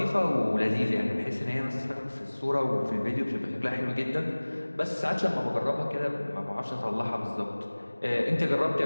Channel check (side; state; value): both; inverted; correlation -1.00